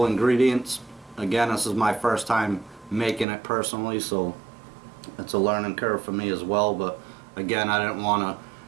ingredients. Again, this is my first time making it personally, so it's a learning curve for me as well. But again, I didn't want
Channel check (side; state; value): left; drops out; at 3.2 s